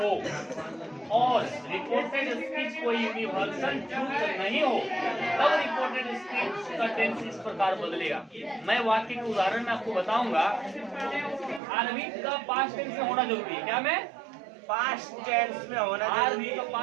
और रिपोर्टेड स्पीच कोई यूनिवर्सल ट्रूथ नहीं हो, तब रिपोर्टेड स्पीच का टेंस इस प्रकार बदलेगा। मैं वाक्य के उदाहरण में आपको बताऊंगा। आरवी का पास्ट टेंस में होना जरूरी है। क्या? मैं पास्ट टेंस में होना आरवी का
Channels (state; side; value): drops out; left; at 11.6 s